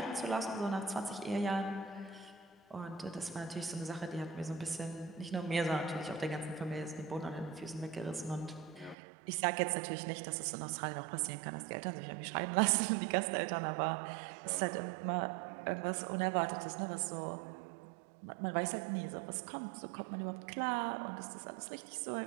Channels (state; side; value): drops out; left; at 9.0 s